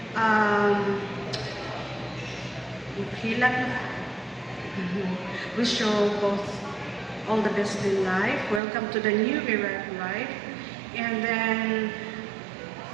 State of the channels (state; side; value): drops out; left; at 8.6 s